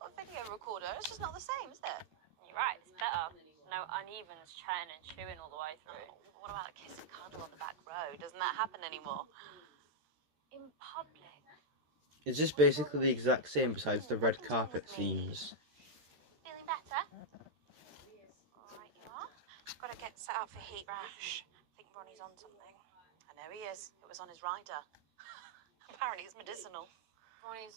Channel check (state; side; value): late; left; 13 ms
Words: a video recorder. It's just not the same, is it? You're right, it's better. No uneven chatting and chewing all the way through. Oh, what about a kiss and cuddle on the back row? Doesn't that happen anymore? In public? Is this basically the exact same besides the red carpet scenes? Feeling better? Alright, you are. Got to get set up for heat rash. I think Ronnie's on something. I know he is. It was on his rider. Apparently it's medicinal.